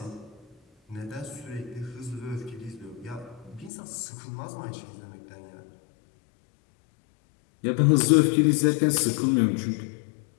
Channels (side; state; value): right; drops out; at 3.7 s